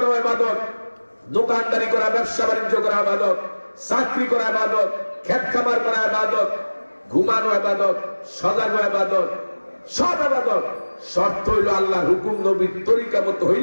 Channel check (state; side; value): inverted; both; correlation -1.00